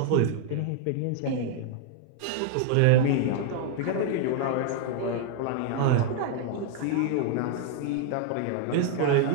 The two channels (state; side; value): different; both; correlation 0.00